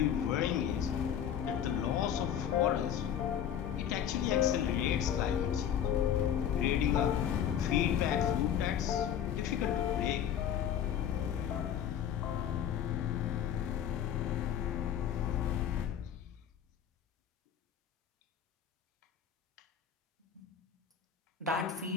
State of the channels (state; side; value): quieter; right; 9.3 dB